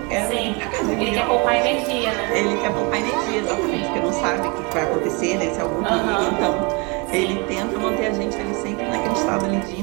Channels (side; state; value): left; quieter; 30.0 dB